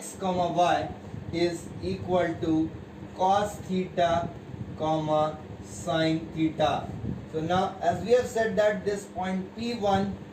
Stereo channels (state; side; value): identical; both; correlation 1.00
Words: comma y is equal to cos theta comma sine theta. So now, as we have said that this point P1